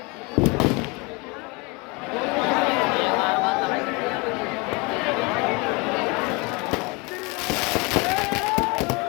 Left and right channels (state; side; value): quieter; right; 28.1 dB